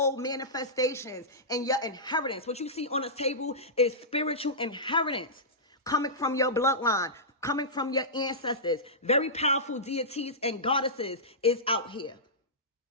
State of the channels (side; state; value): both; normal; correlation -0.16